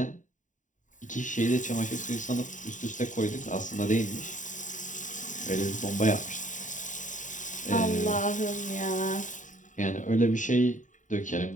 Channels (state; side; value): late; right; 0.36 ms